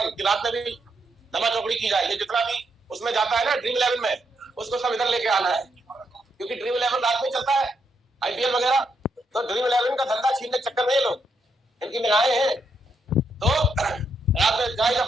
कि रात में भी दमा चौकड़ी की जाए। ये जितना भी उसमें जाता है ना ड्रीम 11 में, उसको सब इधर लेके आना है, क्योंकि ड्रीम 11 रात में चलता है, आईपीएल वगैरह, तो ड्रीम 11 का धंधा छीनने के चक्कर में ये लोग, इनकी निगाहें हैं। तो रात में चाहे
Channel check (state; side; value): normal; both; correlation 0.78